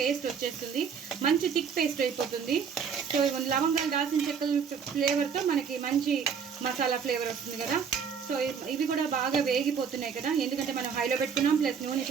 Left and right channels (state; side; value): quieter; left; 6.6 dB